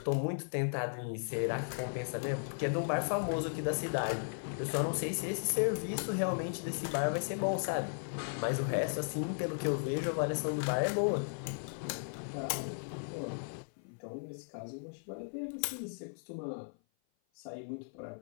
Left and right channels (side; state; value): right; silent; 54 dB below the other